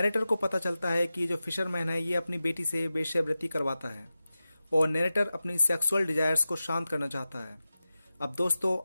को पता चलता है कि जो फिशरमैन है ये अपनी बेटी से वेश्यावृत्ति करवाता है और नैरेटर अपनी सेक्सुअल डिजायर्स को शांत करना चाहता है। अब दोस्तों,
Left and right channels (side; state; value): both; inverted; correlation -0.94